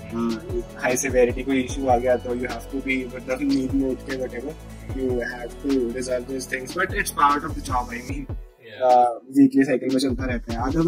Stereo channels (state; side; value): identical; both; correlation 1.00